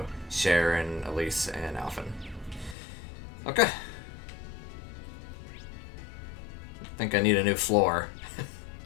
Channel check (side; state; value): right; drops out; at 2.8 s